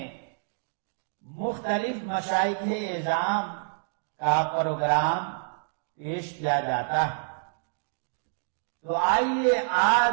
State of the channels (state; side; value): silent; left; digital silence